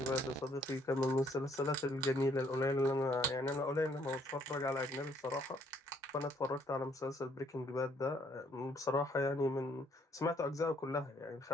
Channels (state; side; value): normal; both; correlation 0.66